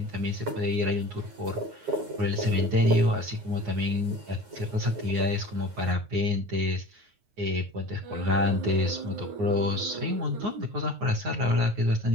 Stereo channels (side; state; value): left; late; 9.6 ms